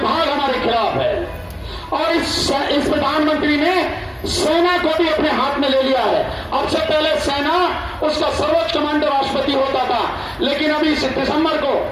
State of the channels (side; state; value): both; identical; correlation 1.00